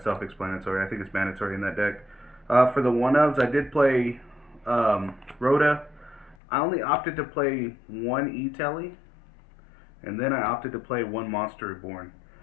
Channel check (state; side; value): drops out; right; at 6.4 s